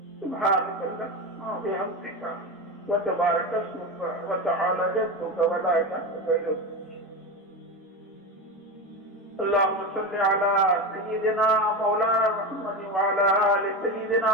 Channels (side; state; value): both; normal; correlation 0.20